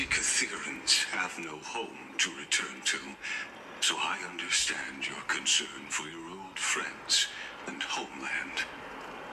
have no home to return to, so I understand your concern for your old friends and homeland.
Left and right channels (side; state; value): both; identical; correlation 1.00